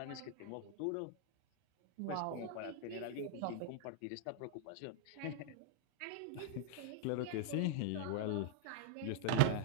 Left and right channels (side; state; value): both; different; correlation 0.00